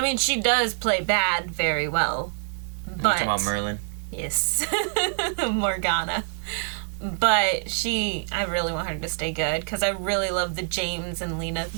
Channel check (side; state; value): left; silent; digital silence